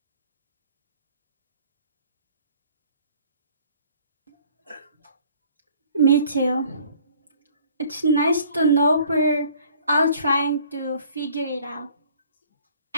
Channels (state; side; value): inverted; both; correlation -0.55